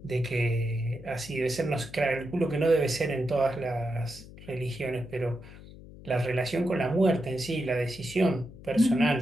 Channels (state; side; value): noise; left; hum, 17 dB below the sound